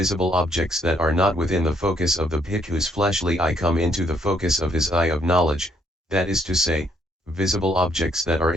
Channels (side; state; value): both; normal; correlation 0.69